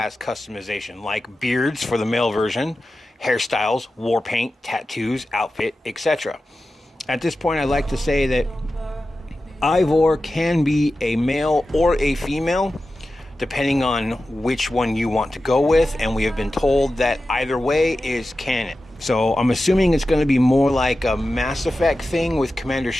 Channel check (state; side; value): normal; both; correlation 0.93